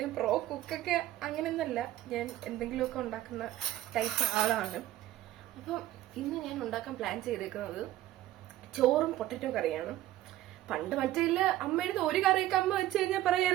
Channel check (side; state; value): left; quieter; 14.5 dB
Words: പ്രോ കുക്കൊക്കെ അങ്ങനെയൊന്നല്ല, ഞാൻ എന്തെങ്കിലുമൊക്കെ ഉണ്ടാക്കുന്ന ടൈപ്പ് ആളാണ്. അപ്പം ഇന്ന് ഞാൻ ഉണ്ടാക്കാൻ പ്ലാൻ ചെയ്തേക്കുന്നത് ചോറും പൊട്ടറ്റോ കറിയാണ്. പണ്ട് മറ്റേ അമ്മയുടെ ഒരു കറിയൊക്കെ അമ്മ വെച്ച് കഴിഞ്ഞാൽ